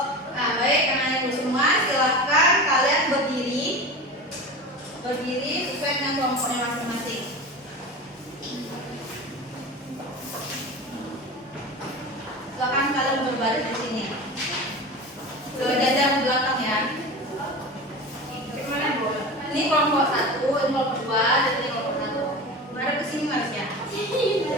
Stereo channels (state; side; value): normal; both; correlation 0.30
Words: kelompoknya masing-masing. Silakan kalian berbaris di sini. Berjajar ke belakang ya. Ini kelompok 1, ini kelompok 2, dan ini kelompok 1. Mari ke sini Marsya.